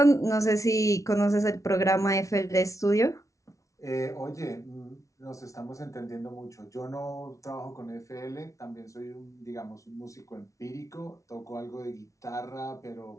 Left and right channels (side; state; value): right; late; 0.15 ms